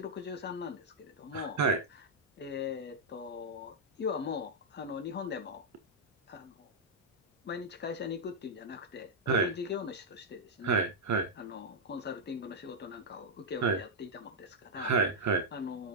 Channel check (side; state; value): both; normal; correlation -0.04